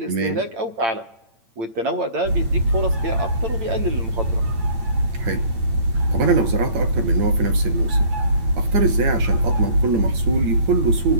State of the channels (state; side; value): late; left; 8.8 ms